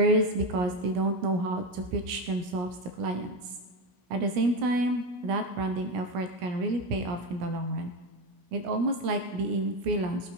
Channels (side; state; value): left; late; 17 ms